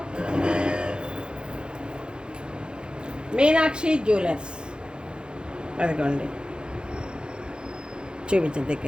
మీనాక్షి జ్యువెలర్స్. అదిగోండి, చూపించండి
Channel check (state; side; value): late; left; 0.049 ms